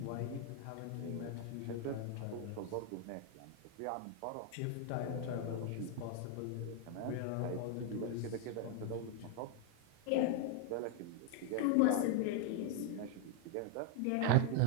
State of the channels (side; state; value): both; different; correlation 0.01